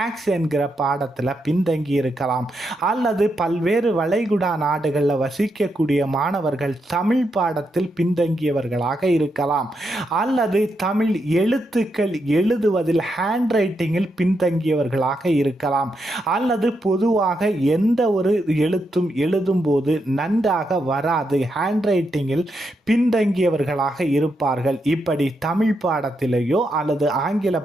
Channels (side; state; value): both; normal; correlation 0.82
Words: என்கிற பாடத்தில் பின்தங்கி இருக்கலாம், அல்லது பல்வேறு வளைகுடா நாடுகளில் வசிக்கக்கூடிய மாணவர்கள் தமிழ் பாடத்தில் பின்தங்கியவர்களாக இருக்கலாம், அல்லது தமிழ் எழுத்துக்கள் எழுதுவதில் ஹேண்ட் ரைட்டிங்கில் பின்தங்கியவர்களாக இருக்கலாம், அல்லது பொதுவாக எந்த ஒரு எழுத்தும் எழுதும்போது நன்றாக வராது, ஹேண்ட் ரைட்டிங்கில் பின்தங்கியவர்களாக இருப்பார்கள். இப்படி தமிழ் பாடத்திலேயோ அல்லது ஆங்கில